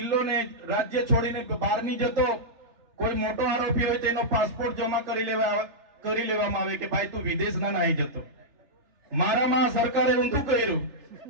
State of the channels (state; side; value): late; left; 3.4 ms